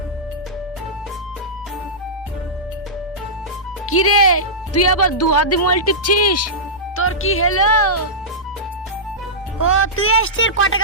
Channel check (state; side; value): normal; both; correlation -0.15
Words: কি রে তুই আবার দু হাত দিয়ে মোবাইল টিপছিস? তোর কি হলো? ও তুই আসছিস, ক